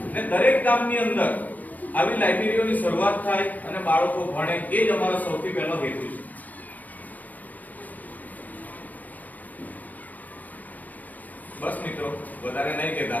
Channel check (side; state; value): right; late; 0.080 ms